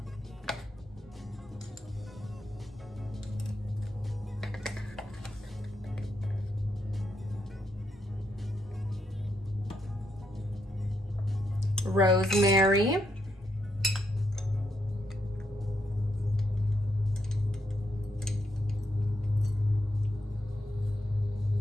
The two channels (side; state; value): both; normal; correlation 0.80